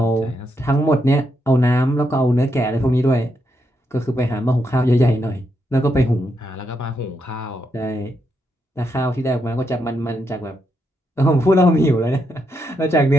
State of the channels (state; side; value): normal; both; correlation 0.80